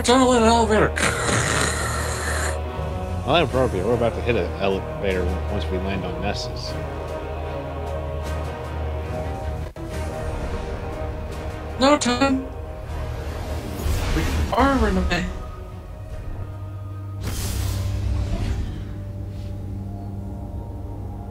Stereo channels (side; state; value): both; identical; correlation 1.00